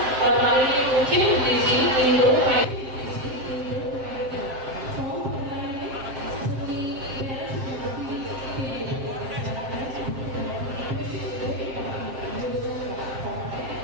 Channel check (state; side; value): late; left; 7.6 ms